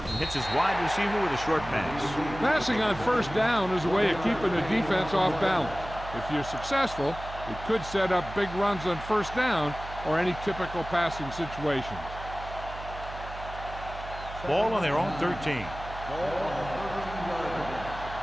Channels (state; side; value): noise; right; hum, 12 dB below the sound